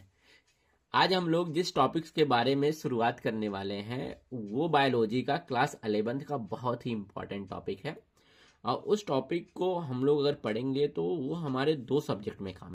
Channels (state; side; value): identical; both; correlation 1.00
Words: आज हम लोग जिस टॉपिक्स के बारे में शुरुआत करने वाले हैं वो बायोलॉजी का क्लास 11th का बहुत ही इंपॉर्टेंट टॉपिक है। और उस टॉपिक को हम लोग अगर पढ़ेंगे तो वो हमारे दो सब्जेक्ट में